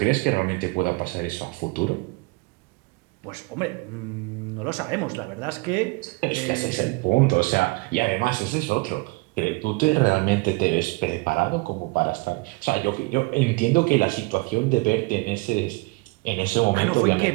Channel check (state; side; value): quieter; left; 26.3 dB